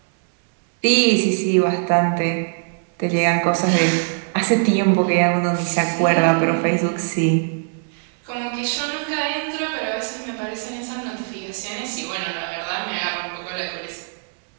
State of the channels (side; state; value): left; silent; digital silence